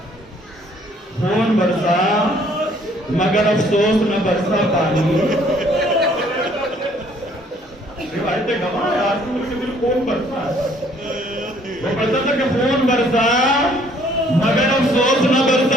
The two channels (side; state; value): both; normal; correlation 0.61